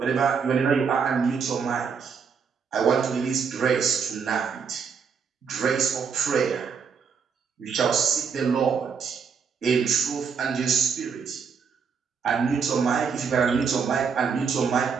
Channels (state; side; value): quieter; left; 6.1 dB